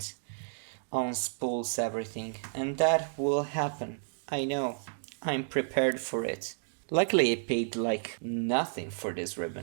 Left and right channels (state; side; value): silent; left; digital silence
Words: unspools everything, and that will happen. I know, I'm prepared for it. Luckily I paid like nothing for this